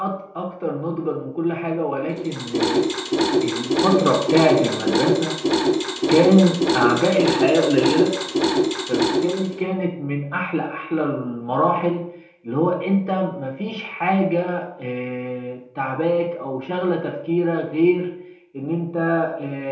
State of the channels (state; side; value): identical; both; correlation 1.00